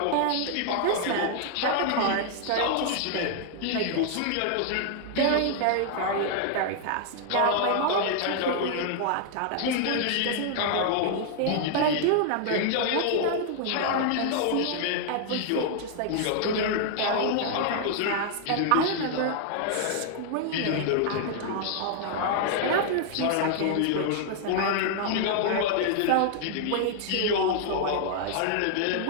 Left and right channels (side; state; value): both; different; correlation 0.00